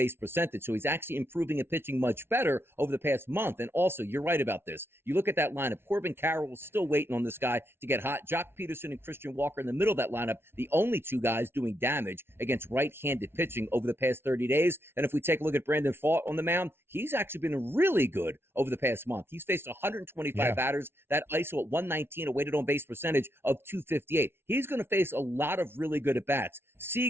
percentage. So he's actually improving and pitching much better over the past month. And also, you're right about this. You look at that lineup. Corbin Carroll still waiting on this guy to get hot. Jock Peterson and Christian Walker in the middle of that lineup, the only 2 guys doing damage against right-handed pitching over the past 30 days. And if we take a look at Brandon Pfaadt on the mound, he's actually been really good over the past month. He's faced 125 batters, that ISO at 119, a weighted on base percentage of 258. He's going to face a lot of really good at-bats.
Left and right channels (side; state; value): left; late; 0.12 ms